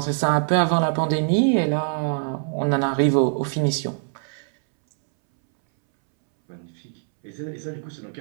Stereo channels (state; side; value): silent; left; 63 dB below the other